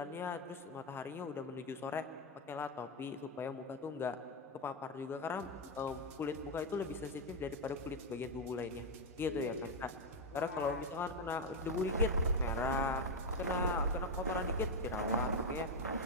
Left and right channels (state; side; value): normal; both; correlation 0.04